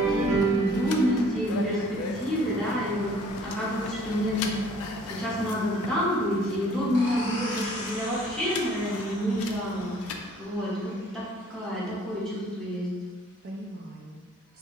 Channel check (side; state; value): both; normal; correlation 0.56